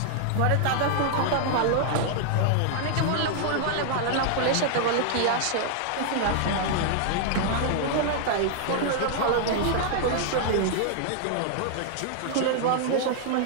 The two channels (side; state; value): both; different; correlation -0.01